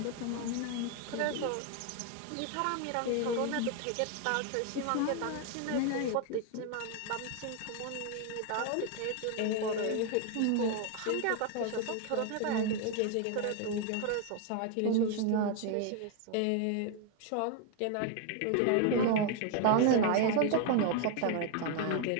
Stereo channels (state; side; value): different; both; correlation 0.01